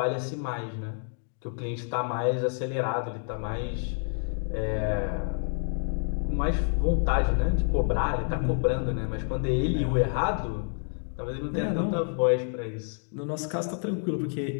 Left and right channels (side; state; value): right; silent; 59 dB below the other